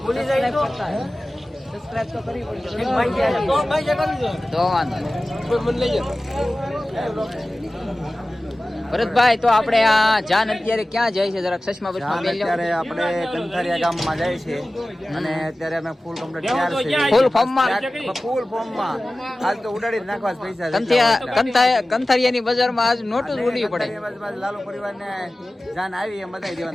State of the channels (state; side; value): normal; both; correlation 0.97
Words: સબસ્ક્રાઇબ તો કરવી પડશે તો વાંધો નહીં। ભરતભાઈ, તો આપણે આ જાન અત્યારે ક્યાં જાય છે? જરાક ચશ્મા બચમાં પહેરી લો। અત્યારે આપણે કંથારિયા ગામમાં જાય છે અને અત્યારે અમે ફૂલ કમ્પ્લીટ તૈયાર છે, ફૂલ ફોર્મમાં આજ તો ઉડાડી જ નાખવા જ પૈસા કંથારિયાની બજારમાં આજ નોટું જ ઉડવી પડે। લાલુ પરિવારને જાન આવી એમ બતાવી